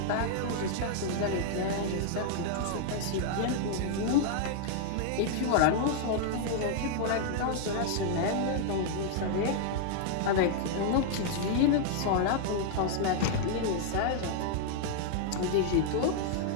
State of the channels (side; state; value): both; different; correlation -0.01